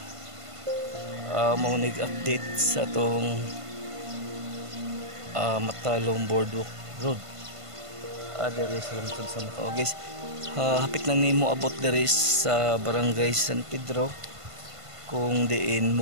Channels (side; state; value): left; late; 1.5 ms